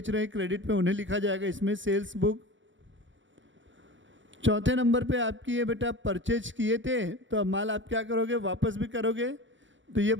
रहे हैं क्रेडिट में उन्हें लिखा जाएगा इसमें सेल्स बुक। चौथे नंबर पे आपकी है बेटा परचेज किए थे तो अब माल आप क्या करोगे? वापस भी करोगे, तो ये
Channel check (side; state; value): left; late; 0.55 ms